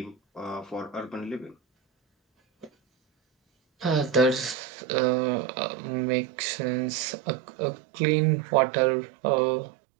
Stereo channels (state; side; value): drops out; left; at 4.5 s